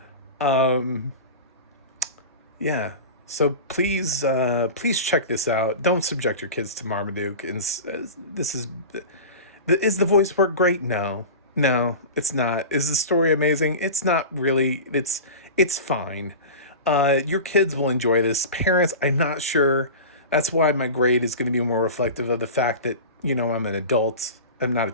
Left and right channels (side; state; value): both; inverted; correlation -0.31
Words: yeah. So please check this out. Don't subject your kids to Marmaduke. Is the voice work great? No, it's not. Is the story amazing? It's not really. It's fine. Your kids will enjoy this. Parents, I'm not sure. That's why my grade is going to be more reflective of the fact that, I'm an adult. I'm not a